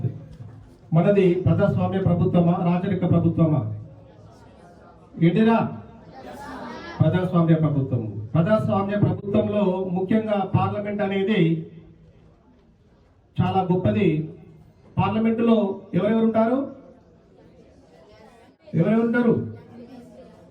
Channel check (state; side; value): identical; both; correlation 1.00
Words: మనది ప్రజాస్వామ్య ప్రభుత్వమా రాచరిక ప్రభుత్వమా? ఏంటిరా? ప్రజాస్వామ్య ప్రభుత్వం. ప్రజాస్వామ్య ప్రభుత్వంలో ముఖ్యంగా పార్లమెంట్ అనేది చాలా గొప్పది. పార్లమెంటులో ఎవరెవరు ఉంటారు?